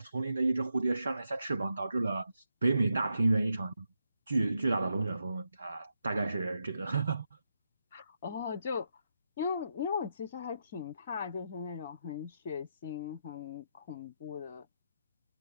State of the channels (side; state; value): both; inverted; correlation -0.84